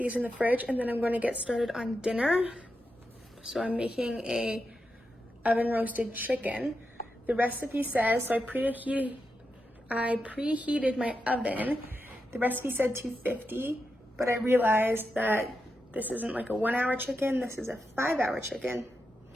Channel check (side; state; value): both; normal; correlation 0.87